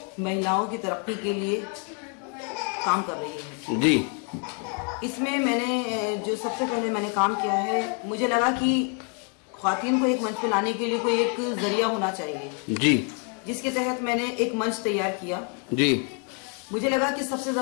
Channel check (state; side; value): quieter; right; 37.6 dB